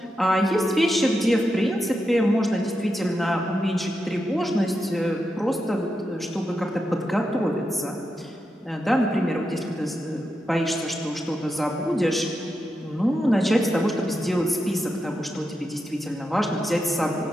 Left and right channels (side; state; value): both; normal; correlation 0.87